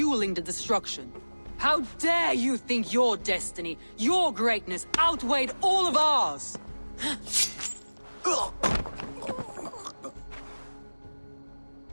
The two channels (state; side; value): inverted; both; correlation -1.00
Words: the destruction. How dare you think your destiny, your greatness, outweighed all of ours?